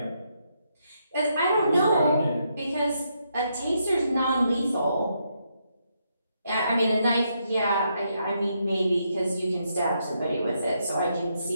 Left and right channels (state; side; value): inverted; both; correlation -0.78